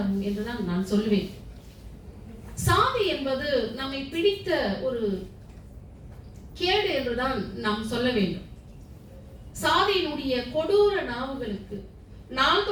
என்றுதான் நான் சொல்லுவேன். சாதி என்பது நம்மை பிடித்த ஒரு கேடு என்றுதான் நாம் சொல்ல வேண்டும். சாதியினுடைய கொடூர நாவுகளுக்கு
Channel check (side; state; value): both; identical; correlation 1.00